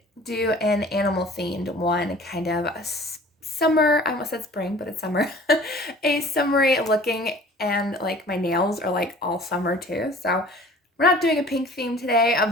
do an animal themed one, kind of a summer, I almost said spring, but it's summer, a summery looking, and like my nails are like all summer too. So we're not doing a pink theme today,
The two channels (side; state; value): both; normal; correlation 0.47